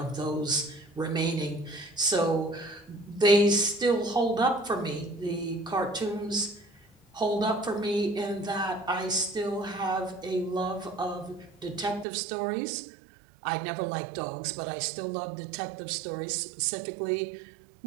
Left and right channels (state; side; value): drops out; left; at 12.1 s